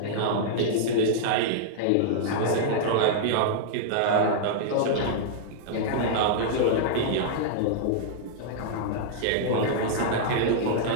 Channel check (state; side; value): different; both; correlation -0.02